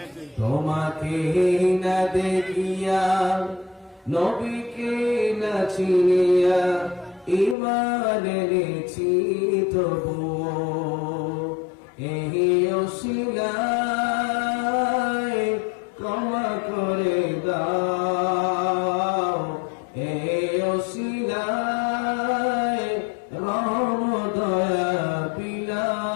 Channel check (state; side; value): drops out; right; at 7.6 s